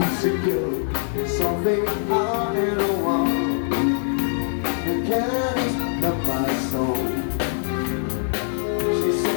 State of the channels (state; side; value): silent; right; digital silence